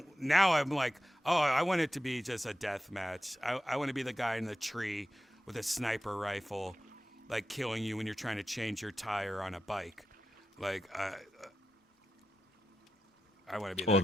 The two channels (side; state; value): both; normal; correlation 0.91